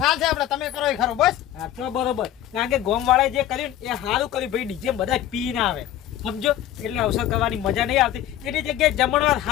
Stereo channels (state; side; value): quieter; right; 12.2 dB